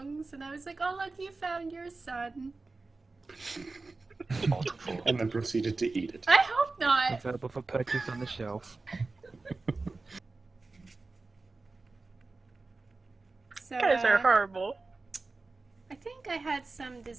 and I was like, "Oh look, you found your son." Multiple. And then proceeded to eat it. I hope not. Available for purchase on the shelf. So, You guys are horrible. I think I had some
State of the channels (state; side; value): quieter; left; 3.6 dB